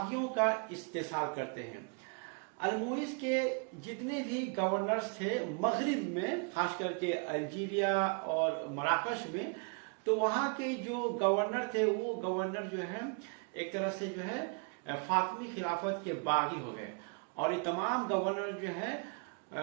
का इस्तेसाल करते हैं। अल-मुइज़ के जितने भी गवर्नर्स थे मगरिब में, खास करके अल्जीरिया और मराकश में, तो वहाँ के जो गवर्नर थे वो गवर्नर जो है एक तरह से जो है फातमी खिलाफत के बागी हो गए और ये तमाम गवर्नर जो है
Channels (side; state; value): left; quieter; 36.6 dB